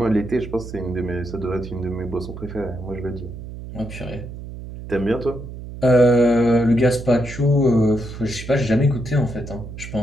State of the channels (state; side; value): noise; right; hum, 11 dB below the sound